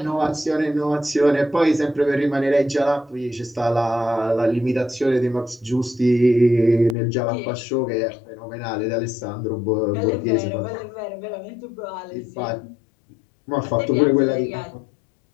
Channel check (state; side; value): drops out; right; at 7.0 s